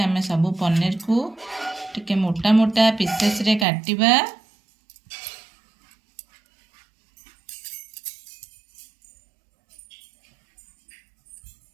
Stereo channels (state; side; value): drops out; left; at 3.7 s